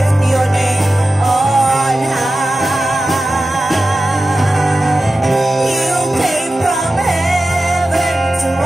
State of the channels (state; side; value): normal; both; correlation 0.94